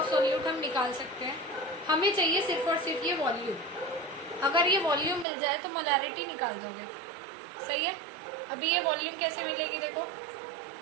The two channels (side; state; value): left; drops out; at 5.2 s